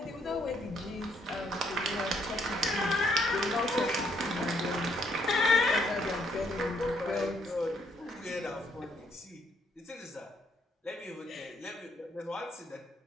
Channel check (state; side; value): normal; both; correlation 0.70